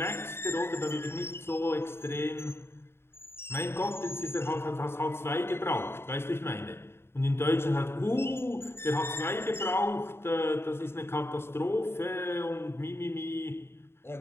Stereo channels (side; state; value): right; late; 0.12 ms